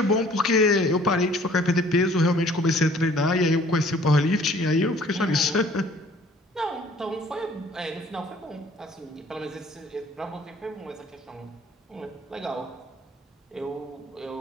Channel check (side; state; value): both; normal; correlation 0.55